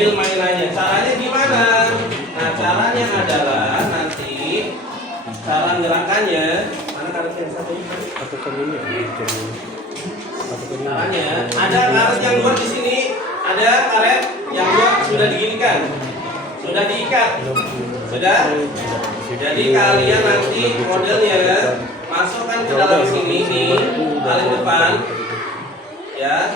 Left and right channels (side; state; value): both; normal; correlation 0.44